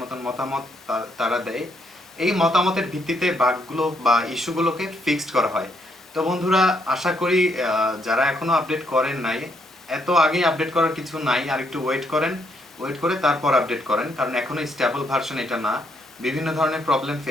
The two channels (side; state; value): both; normal; correlation 0.74